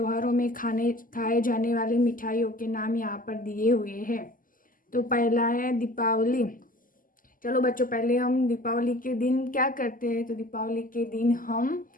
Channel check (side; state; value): right; late; 0.41 ms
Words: में खाए जाने वाली मिठाइयों के नाम यहाँ पर दिए हुए हैं। तो पहला है दीपावली। चलो बच्चों, पहले हम दीपावली के दिन क्या करते हैं। तो दीपावली के दिन हम